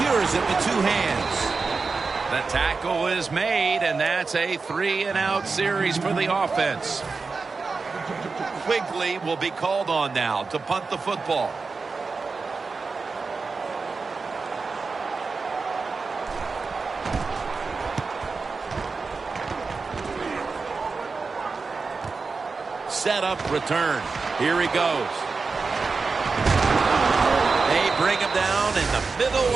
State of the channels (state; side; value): quieter; left; 4.4 dB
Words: it with 2 hands. The tackle is made, and that's a 3-and-out series for the offense. Quigley will be called on now to punt the football. Set up return. Here he goes. They bring him down in the middle